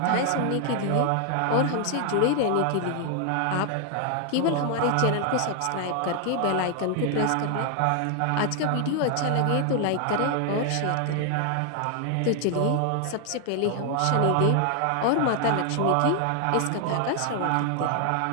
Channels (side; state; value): both; different; correlation 0.00